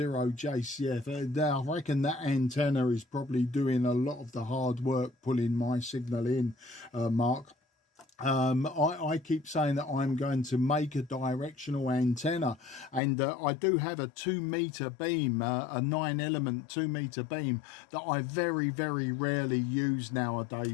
I reckon that antenna is probably doing a lot of the hard work pulling my signal in, Mark. I keep saying that I'm going to make a directional antenna, and I do have a 2-meter beam, a 9-element 2-meter beam that I very rarely use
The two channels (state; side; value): drops out; right; at 13.0 s